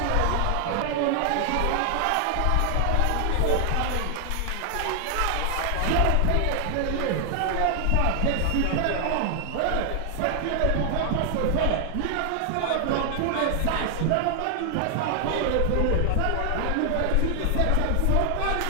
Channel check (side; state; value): both; different; correlation 0.00